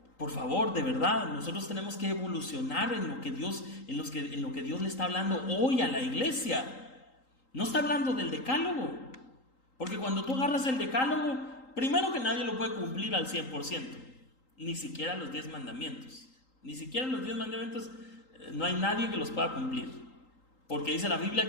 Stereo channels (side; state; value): right; late; 3.8 ms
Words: Por favor, de verdad, nosotros tenemos que evolucionar en lo que Dios le está hablando hoy a la iglesia. No está hablando del decálogo. Porque cuando tú agarras el decálogo, primero que nadie lo puede cumplir al 100%. Ni siquiera los 10 mandamientos. Ni siquiera los 10 mandamientos, no hay nadie que los pueda cumplir. Porque dice la